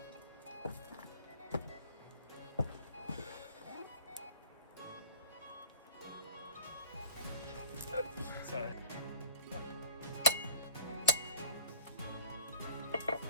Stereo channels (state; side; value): inverted; both; correlation -0.45